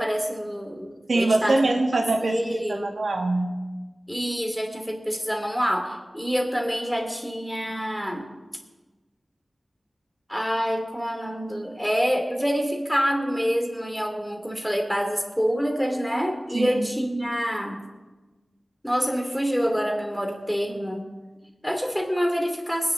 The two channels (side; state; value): both; normal; correlation 0.98